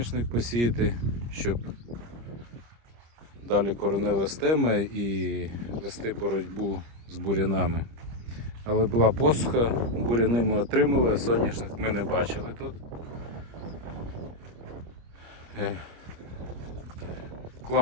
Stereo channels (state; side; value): late; left; 25 ms